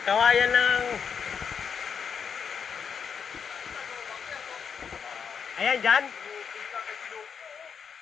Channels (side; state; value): right; quieter; 6.7 dB